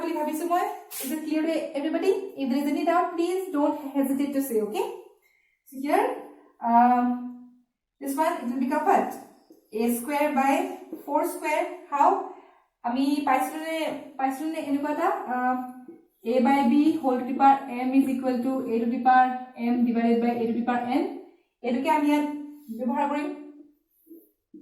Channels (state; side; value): identical; both; correlation 1.00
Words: বুলি ভাবিছো মই. is it clear to everybody? if there is any doubt please don't hesitate to say. okay, so here this one it will become what? a square by 4 square. how? আমি পাইছনে এনেকুৱা এটা a by b whole to the power m is equal to a to the power m divided by a to the power n. এটোকে আমি ইয়াত ব্যৱহাৰ কৰিম.